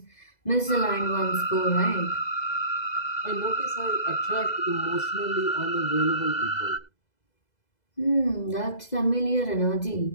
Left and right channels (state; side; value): late; right; 2.0 ms